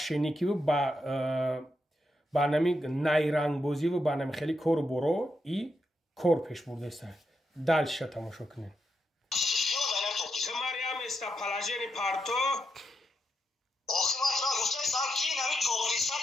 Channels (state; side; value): normal; both; correlation 0.83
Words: و با نمی نایرنگ بازی و با نمی خیلی کور برو این کور پیش برده است دلش تماشا کنین تو مریم است پلاژنی پارتو آخه من را گفته سر کی نمی توقی